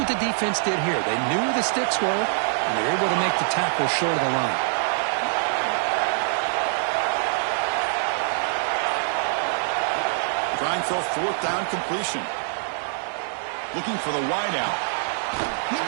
the defense did here. They knew where the sticks were, and they were able to make the tackle short of the line. Trying for a fourth down completion. Looking for the wideout. He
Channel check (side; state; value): left; silent; 62 dB below the other